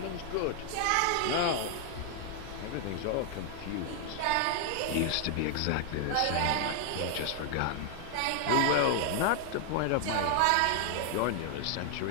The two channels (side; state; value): both; different; correlation 0.00